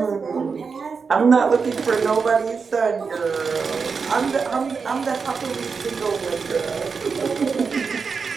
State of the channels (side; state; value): left; quieter; 5.3 dB